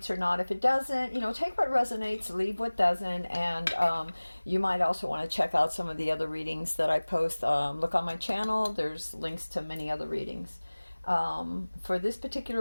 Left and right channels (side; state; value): both; inverted; correlation -1.00